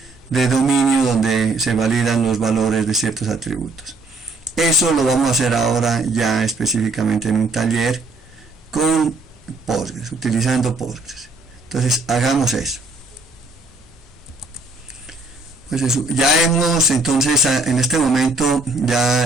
de dominio, donde se validan los valores de ciertos atributos. Eso lo vamos a hacer ahora ya específicamente en un taller con Postgres, utilizando Postgres. Entonces hagamos eso. Pues eso, ya hemos, entonces en este momento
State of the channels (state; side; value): quieter; left; 3.0 dB